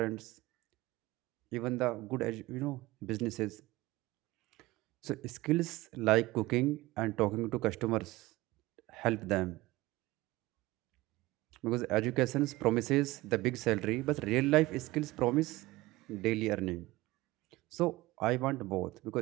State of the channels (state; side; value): quieter; left; 19.3 dB